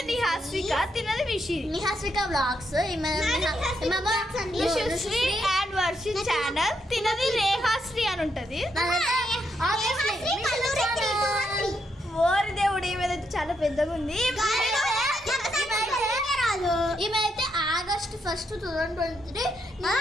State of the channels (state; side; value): normal; both; correlation 0.79